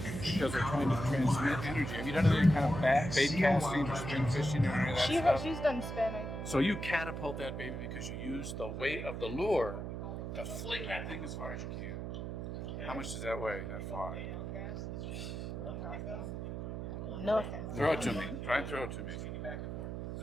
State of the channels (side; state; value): right; noise; hum, 5 dB below the sound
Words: because they're trying to transmit energy, have you done any kind of bait casting or spin fishing or any of that stuff? She's done spin. So you catapult that baby because you use the weight of the lure to fling that thing as far as you can. How much does that weigh, that fly? No. Throw it to me. Try and throw it to me.